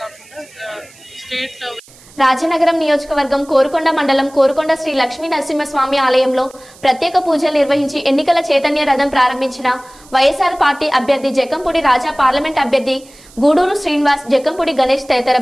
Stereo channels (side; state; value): right; noise; hiss, 24 dB below the sound